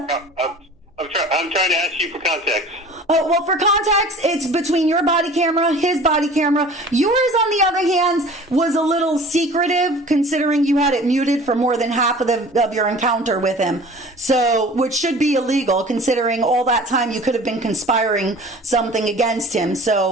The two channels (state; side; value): normal; both; correlation 0.44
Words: I'm trying to ask you for context. Oh, well, for context, it's between your body camera, his body camera. Yours, on the other hand, was a little secretive, considering you had it muted for more than half of your encounter with him. So, which should be illegal, considering all that time you could have been conspiring something against him.